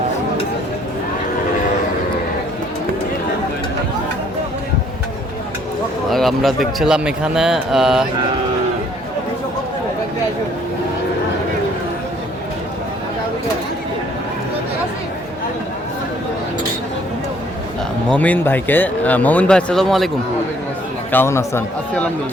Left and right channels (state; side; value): normal; both; correlation 0.62